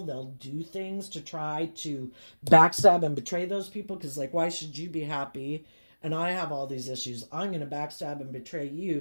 they'll do things to try to backstab and betray those people. Because, like, why should you be happy and I have all these issues? I'm going to backstab and betray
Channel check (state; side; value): inverted; both; correlation -1.00